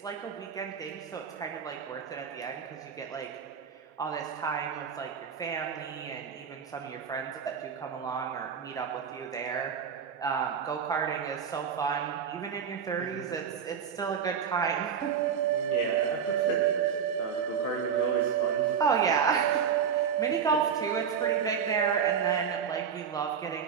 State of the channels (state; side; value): quieter; left; 7.2 dB